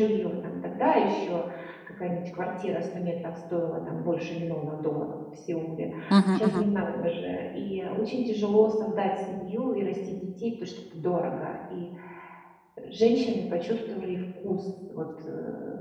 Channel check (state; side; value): identical; both; correlation 1.00